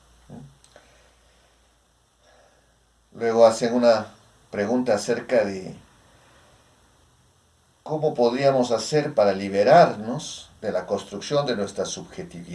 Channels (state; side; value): identical; both; correlation 1.00